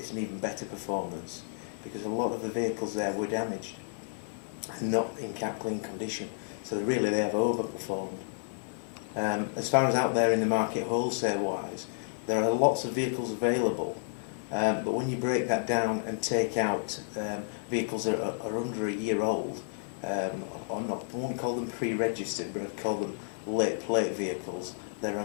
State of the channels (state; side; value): silent; right; 57 dB below the other